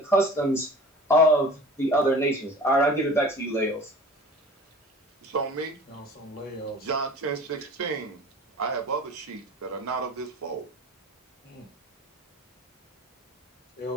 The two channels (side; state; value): both; normal; correlation 0.42